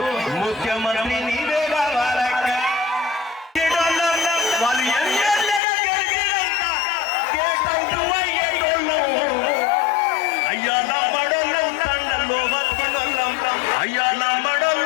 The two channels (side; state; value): right; drops out; at 5.6 s